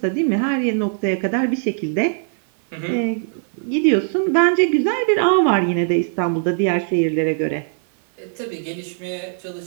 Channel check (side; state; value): left; silent; 58 dB below the other